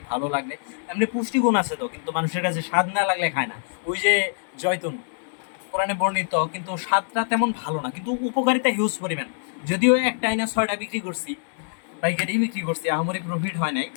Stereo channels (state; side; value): silent; right; digital silence